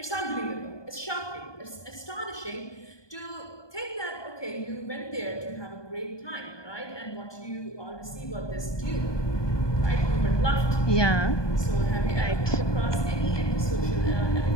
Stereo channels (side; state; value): right; late; 1.2 ms